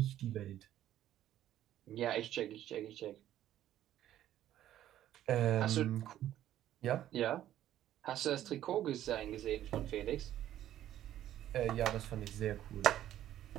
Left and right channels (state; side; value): quieter; left; 12.3 dB